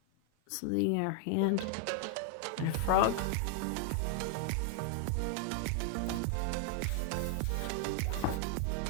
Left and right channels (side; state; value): both; different; correlation 0.00